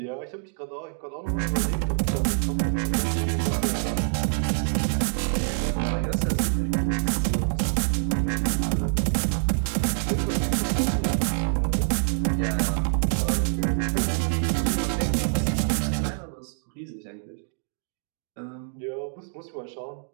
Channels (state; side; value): silent; left; digital silence